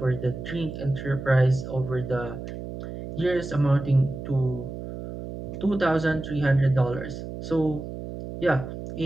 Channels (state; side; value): noise; right; hum, 9 dB below the sound